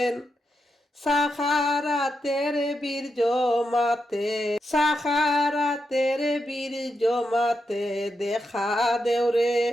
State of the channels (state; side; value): normal; both; correlation 0.85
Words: সাখারাতের বীর জমাতে, সাখারাতের বীর জমাতে দেখা দেওরে